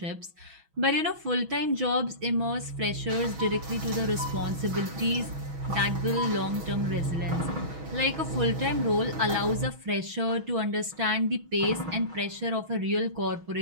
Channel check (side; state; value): left; late; 6.2 ms